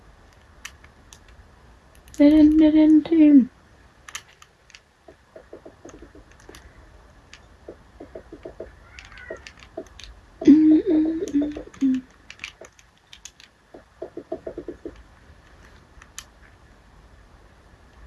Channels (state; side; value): identical; both; correlation 1.00